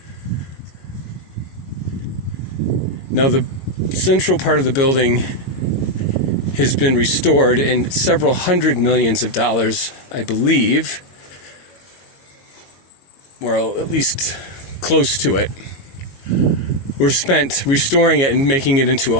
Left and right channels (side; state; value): right; late; 22 ms